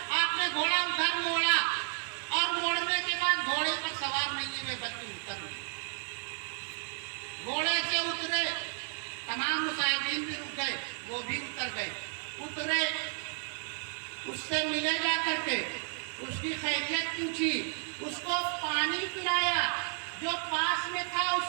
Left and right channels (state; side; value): silent; left; 56 dB below the other